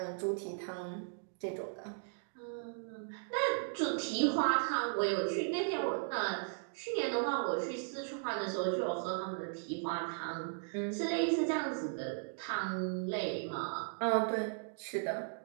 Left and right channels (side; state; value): left; silent; digital silence